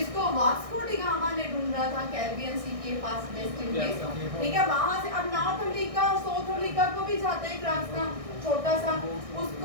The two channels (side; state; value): left; late; 1.6 ms